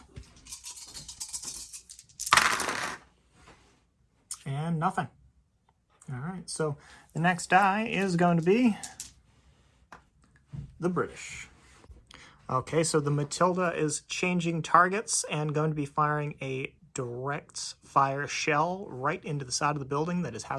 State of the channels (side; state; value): both; identical; correlation 1.00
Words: And nothing. All right, so the next die is going to be the British. Okay, so the Matilda is changing targets and going to be firing a direct fire shell right into the side of the building that is